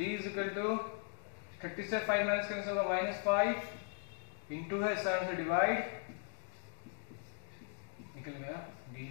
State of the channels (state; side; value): silent; right; 52 dB below the other